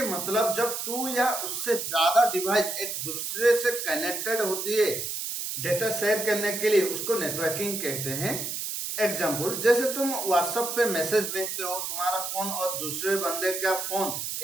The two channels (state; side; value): noise; right; hiss, 4 dB below the sound